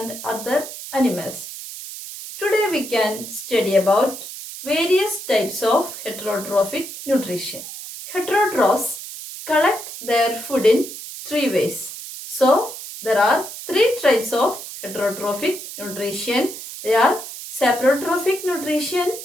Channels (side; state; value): right; noise; hiss, 11 dB below the sound